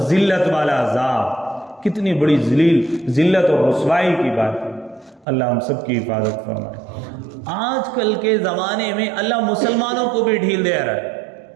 ذلت والا عذاب، کتنی بڑی ذلت اور رسوائی کی بات ہے، اللہ ہم سب کی حفاظت فرمائے۔ آج کل کے زمانے میں اللہ مسلمانوں کو بھی ڈھیل دے رہا ہے،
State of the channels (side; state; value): left; drops out; at 5.2 s